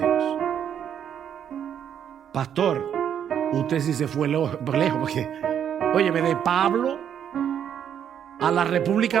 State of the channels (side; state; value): left; quieter; 9.0 dB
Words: Pastor, usted sí se fue lejos, porque, óyeme, de Pablo a la República